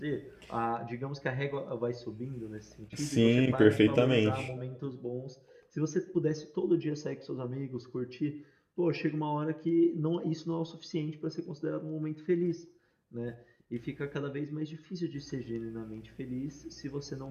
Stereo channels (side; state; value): both; identical; correlation 1.00